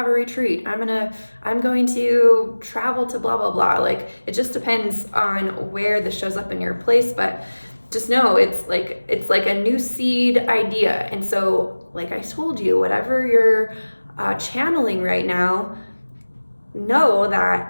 a retreat. I'm going to travel to blah, blah, blah. Like, it just depends on where this shows up in your place, but just know it's like a new seed idea. And so, like I told you, whatever you're channeling right now, know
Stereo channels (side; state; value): both; inverted; correlation -1.00